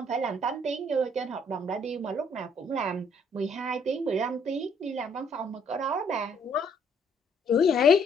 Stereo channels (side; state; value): both; normal; correlation 0.65